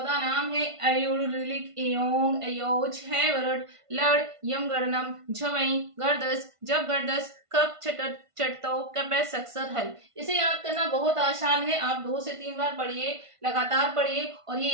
नाम है। अयुर, ऋलिक, एयोंग, अयोज, है वरड, लड़, यम, गणनम, झवई, गर्दस, जब गर्दस, कप, छटत, चटतो, कपै, सक्सर, हल। इसे याद करना बहुत आसान है। आप 2 से 3 बार पढ़िए, लगातार पढ़िए और ये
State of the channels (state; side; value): late; left; 1.5 ms